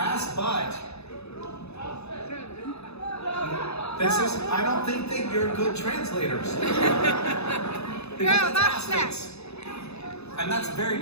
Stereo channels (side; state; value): right; late; 0.79 ms